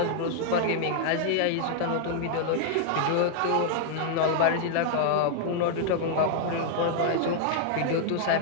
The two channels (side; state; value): both; different; correlation 0.00